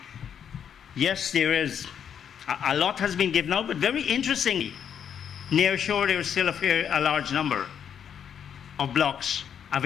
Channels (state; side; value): quieter; right; 8.3 dB